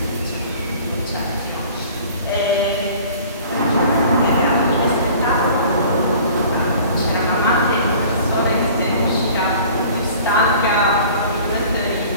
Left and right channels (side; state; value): both; inverted; correlation -0.47